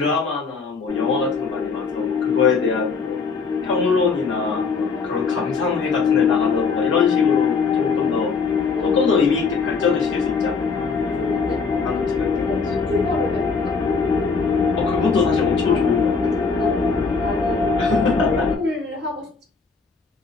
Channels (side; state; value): right; quieter; 5.0 dB